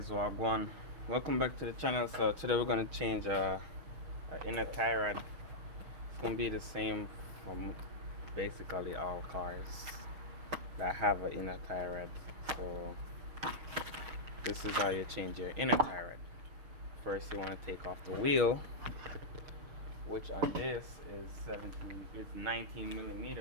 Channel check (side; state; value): left; late; 6.3 ms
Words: Wagwan. Welcome back to the channel. So today we're gonna change our inner tie rod. It's gonna be the same from basically all cars that have an inner tie rod. So this is how you change your inner tie rod. First, you want to take off the wheel, which on this is 19